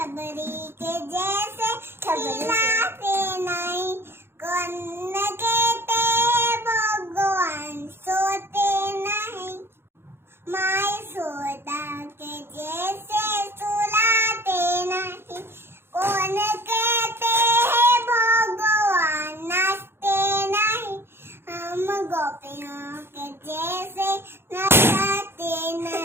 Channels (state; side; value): late; left; 0.11 ms